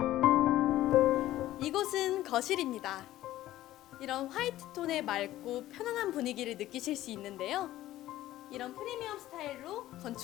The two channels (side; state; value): right; quieter; 14.6 dB